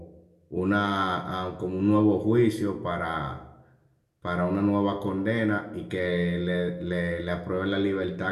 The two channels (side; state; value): both; identical; correlation 1.00